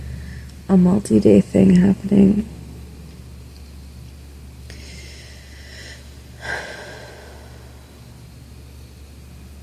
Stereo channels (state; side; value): identical; both; correlation 1.00